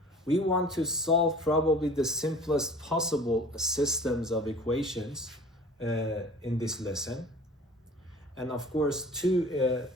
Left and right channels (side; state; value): both; normal; correlation 0.44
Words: We want to solve probably the simplest possible systems of equations in this lesson. And of course, two